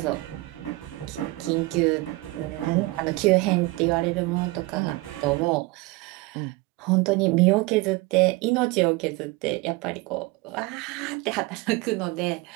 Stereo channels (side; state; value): left; quieter; 22.0 dB